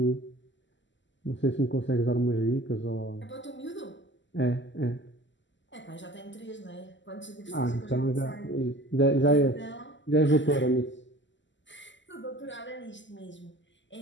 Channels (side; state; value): right; late; 0.54 ms